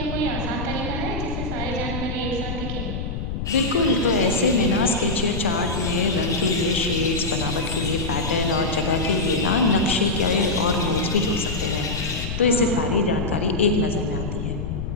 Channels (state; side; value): noise; left; rumble, 5 dB below the sound